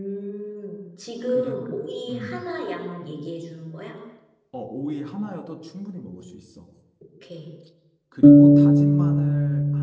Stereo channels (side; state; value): both; identical; correlation 1.00